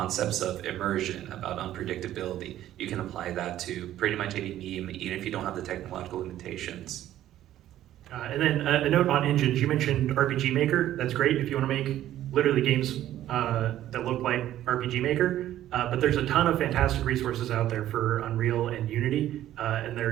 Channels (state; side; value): quieter; left; 12.8 dB